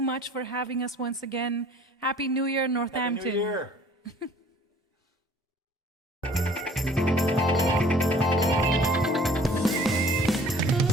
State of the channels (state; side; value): normal; both; correlation 0.52